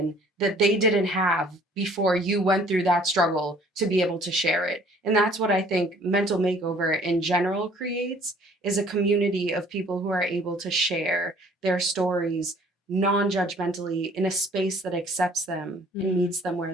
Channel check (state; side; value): normal; both; correlation 0.55